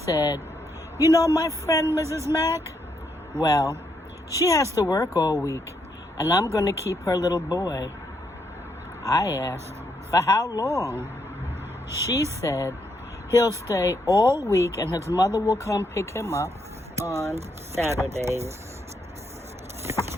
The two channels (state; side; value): normal; both; correlation 0.77